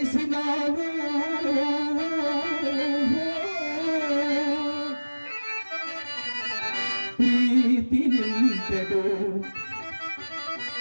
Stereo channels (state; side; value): inverted; both; correlation -1.00